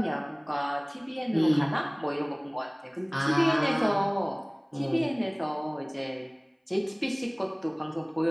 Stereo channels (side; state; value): both; identical; correlation 1.00